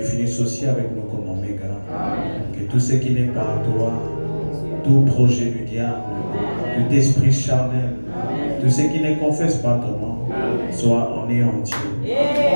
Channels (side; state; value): both; inverted; correlation -1.00